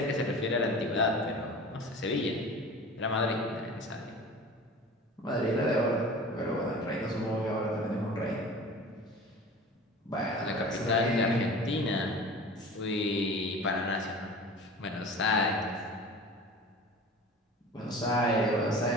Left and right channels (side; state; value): both; normal; correlation 0.38